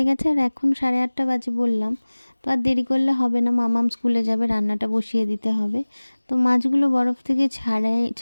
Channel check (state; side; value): inverted; both; correlation -1.00